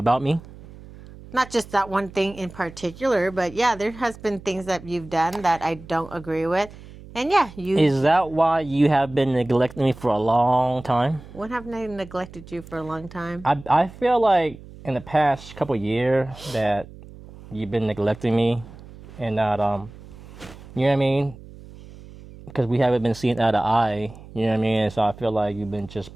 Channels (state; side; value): noise; right; hum, 18 dB below the sound